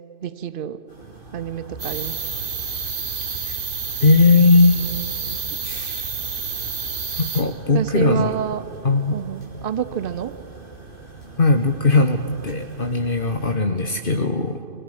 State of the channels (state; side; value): late; right; 2.5 ms